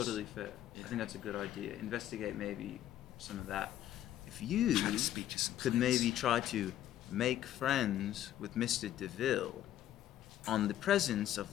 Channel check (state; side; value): quieter; right; 12.2 dB